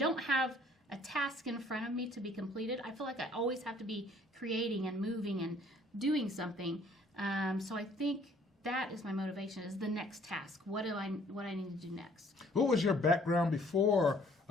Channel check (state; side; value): normal; both; correlation 0.58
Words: have a task in front of me to be completed, I feel like I always have to be creating and moving and doing something. So I think that is my motivation, is the next task. What I need to do next. What was your background before